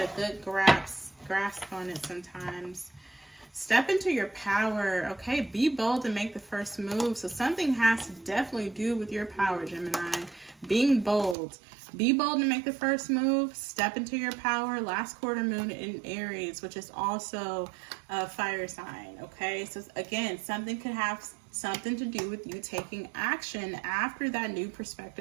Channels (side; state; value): left; drops out; at 11.4 s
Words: good grasp on it sometimes. Step into your power, okay? Be bold and make the first move. So something has to definitely do with your power, Gemini. Being bold. Be bold and make the first move. Step into your power. Last quarter moon in Aries, which is also a fire sign, okay? So again, something could have something to do with you taking action after that new